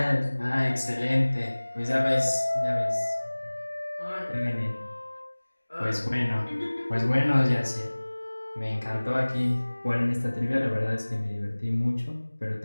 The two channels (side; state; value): both; inverted; correlation -1.00